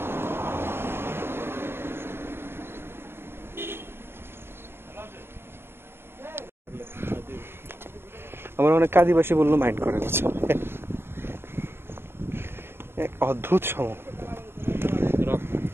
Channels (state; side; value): late; left; 0.11 ms